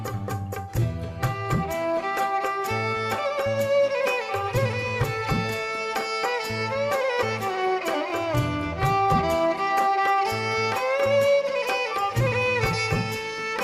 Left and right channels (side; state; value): both; identical; correlation 1.00